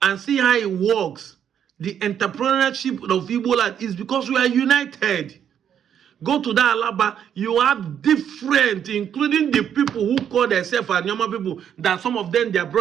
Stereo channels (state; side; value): quieter; left; 9.0 dB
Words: and see how it works. The entrepreneurship of Igbo land is because we are united. Go to that Alaba, you have different, including the people who call themselves Anyoma people, that some of them, their